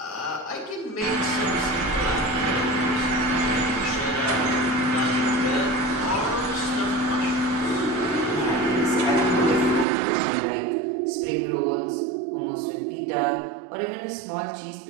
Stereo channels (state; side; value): drops out; left; at 9.9 s